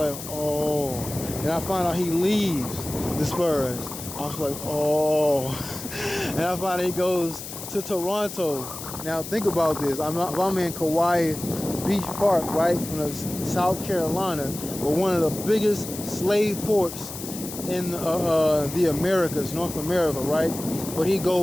oh. And I find out he leaves the Spurs. I was like, oh. And I find out he goes to Toronto. Now think about this. I'm in Kiawah Beach Park, right, in South Carolina, but one of the biggest slave ports in the Americas, North America, right? But he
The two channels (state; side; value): noise; left; hiss, 10 dB below the sound